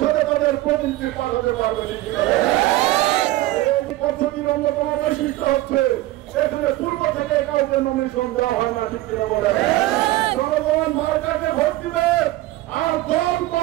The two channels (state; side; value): quieter; left; 17.2 dB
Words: তাদের প্রতিনিধি পাঠাতে পারবে। এই পদ্ধতির অন্যতম বৈশিষ্ট্য হচ্ছে এখানে পূর্ব থেকে কাউকে নমিনেশন দেওয়া হয় না, ঠিক কিনা বলে? জনগণ মার্কাকে ভোট দিবে আর দল